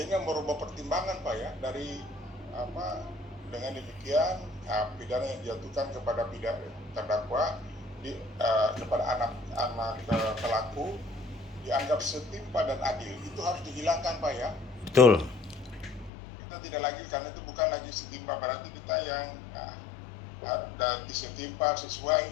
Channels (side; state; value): right; drops out; at 16.1 s